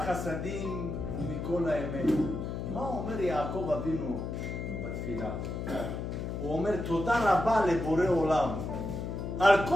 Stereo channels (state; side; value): noise; left; hum, 4 dB below the sound